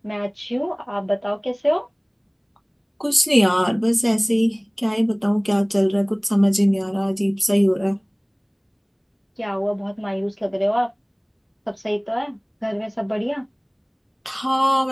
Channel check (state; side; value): identical; both; correlation 1.00